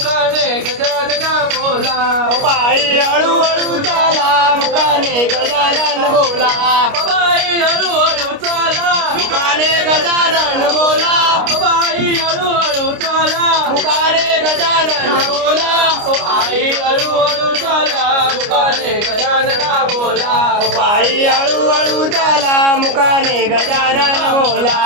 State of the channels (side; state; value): left; late; 29 ms